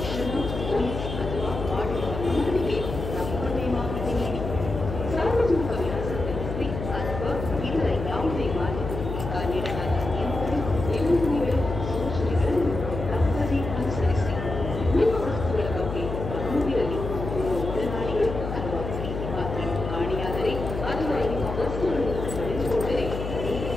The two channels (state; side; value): noise; left; hum, 5 dB below the sound